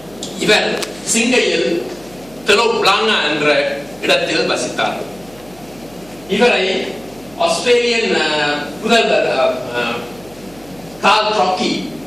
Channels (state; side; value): noise; right; hum, 24 dB below the sound